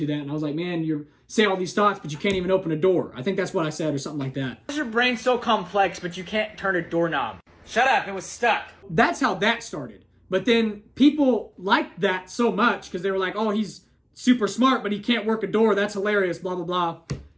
that, and I was like, man, you say all these thoughts, but you can't even open a door. I think that's what I said, or something like that. Why is your brain so complex, but you can't turn a doorknob? Shut up, it was stuck. That's how that started. But then people liked that so much because they were like, oh, he's super smart, but he can't work a door. That's hilarious, blah, blah, blah.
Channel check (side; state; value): both; identical; correlation 1.00